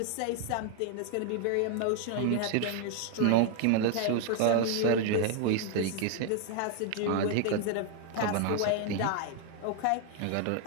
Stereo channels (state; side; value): different; both; correlation 0.00